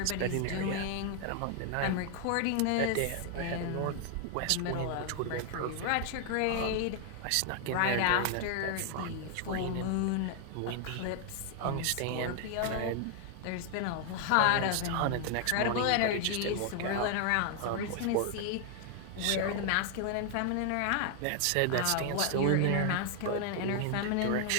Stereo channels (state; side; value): different; both; correlation 0.00